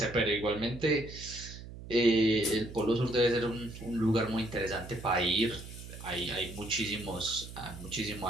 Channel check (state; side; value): noise; right; hum, 13 dB below the sound